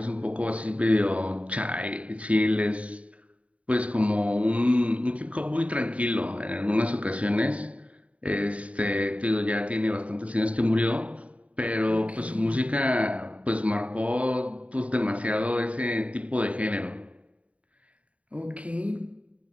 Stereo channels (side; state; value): left; late; 0.066 ms